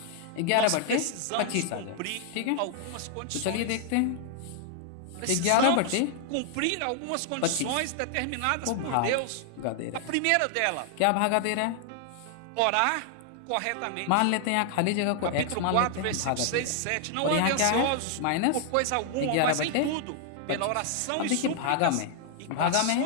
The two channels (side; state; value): both; different; correlation 0.00